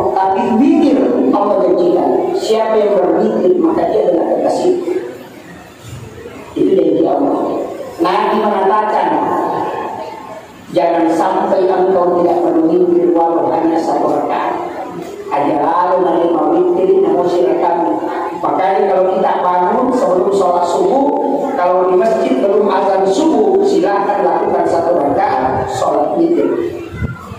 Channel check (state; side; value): identical; both; correlation 1.00